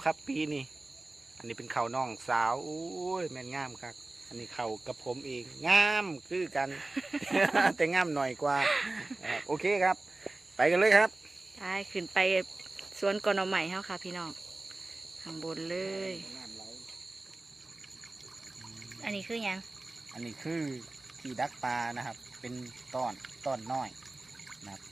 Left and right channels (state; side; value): quieter; left; 3.0 dB